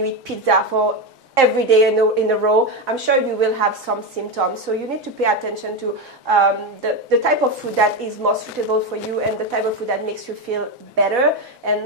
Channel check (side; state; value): both; normal; correlation 0.14